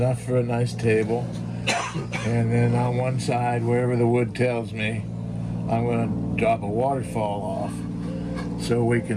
for a nice table. And then on one side, wherever the wood tells me, I'm going to drop a waterfall off so we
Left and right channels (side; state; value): both; identical; correlation 1.00